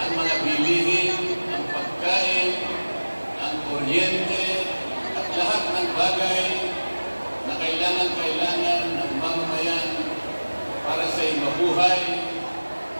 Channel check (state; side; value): inverted; both; correlation -1.00